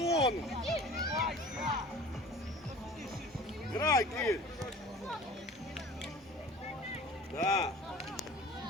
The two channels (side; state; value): both; normal; correlation 0.43